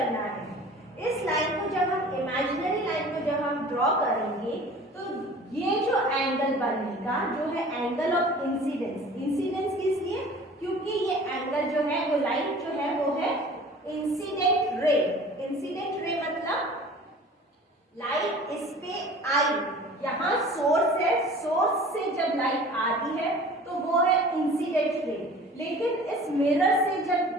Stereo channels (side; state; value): both; normal; correlation 0.44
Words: है। इस लाइन को जब हम इमेजिनरी लाइन को जब हम ड्रॉ करेंगे तो ये जो एंगल बनेगा जो है एंगल ऑफ इंसिडेंस। इंसिडेंस किस लिए, क्योंकि ये एंगल जो है, वो लाइट जो है वो है इंसिडेंट रे। इंसिडेंट रे मतलब लाइट इस पे आई, यहाँ सोर्स है, सोर्स से जब लाइट आती है तो वो है इंसिडेंट रे, लेकिन इस मिरर से जब